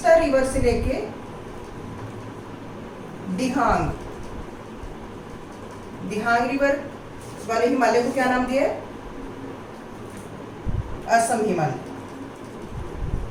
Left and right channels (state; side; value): identical; both; correlation 1.00